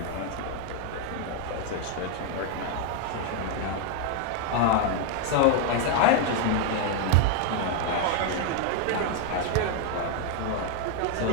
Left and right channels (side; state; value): both; different; correlation 0.00